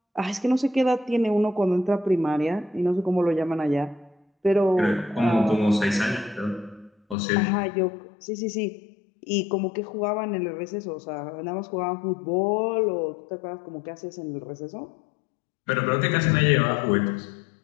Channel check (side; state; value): right; drops out; at 7.2 s